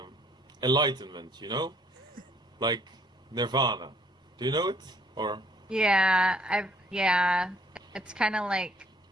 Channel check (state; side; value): normal; both; correlation 0.63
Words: enlightenment, you know, like nirvana. Do you know it? Or Yeah, it's kind of like